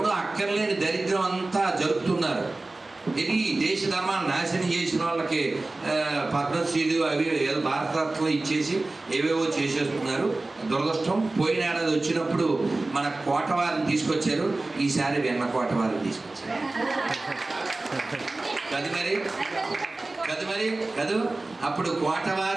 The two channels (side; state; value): left; quieter; 3.1 dB